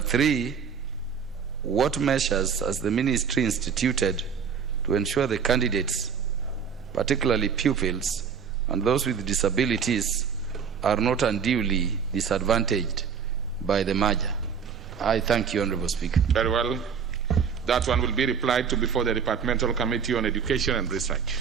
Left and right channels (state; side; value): quieter; left; 6.8 dB